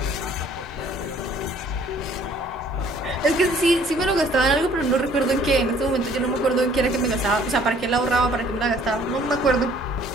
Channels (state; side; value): normal; both; correlation 0.58